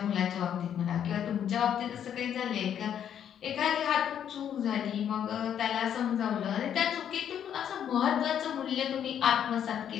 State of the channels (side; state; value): right; quieter; 9.3 dB